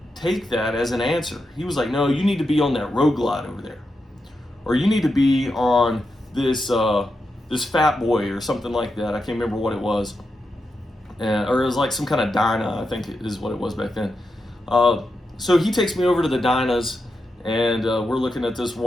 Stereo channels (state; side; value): normal; both; correlation 0.87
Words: take that as an answer. He was like, no, you need to be on that Road Glide over there. Or you need to be on this Fat Boy or something like that. I can't remember what it was. Or it was like some kind of Dyna, I think is what it was back then. So he takes me over to the Dynas, and we're looking at this